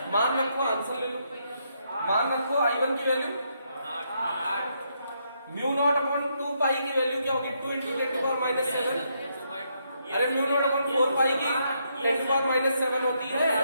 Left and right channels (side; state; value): both; inverted; correlation -0.77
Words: मान रखो, आंसर ले लो, मान रखो I1 की वैल्यू म्यू नॉट अपॉन 2 पाई की वैल्यू क्या होगी? 2 इंटू 10⁻⁷। अरे म्यू नॉट अपॉन 4 पाई की 10⁻⁷ होती है,